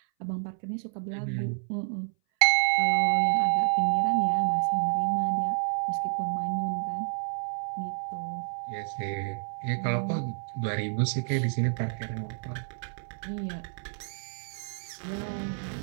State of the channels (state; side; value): silent; left; 58 dB below the other